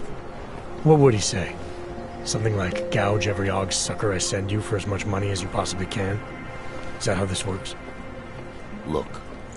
What would he say? Something like, gouge every Augs sucker I send you for as much money as you possibly can? Is that how this works? Look,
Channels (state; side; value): identical; both; correlation 1.00